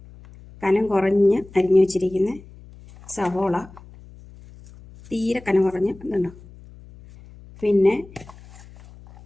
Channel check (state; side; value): noise; left; hum, 21 dB below the sound